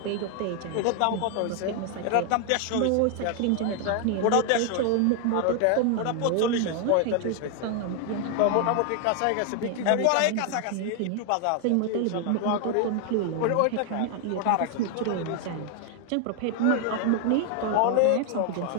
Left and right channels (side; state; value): both; different; correlation 0.00